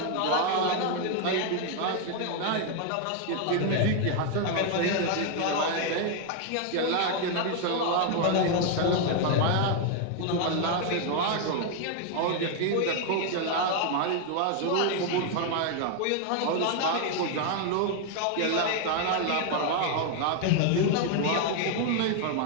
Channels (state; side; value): different; both; correlation 0.00